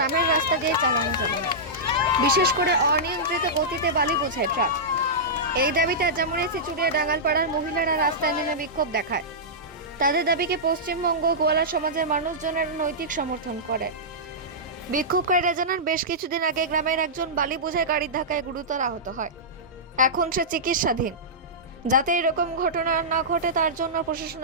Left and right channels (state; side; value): normal; both; correlation -0.14